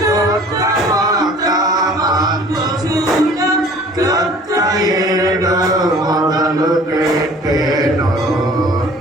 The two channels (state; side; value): normal; both; correlation 0.49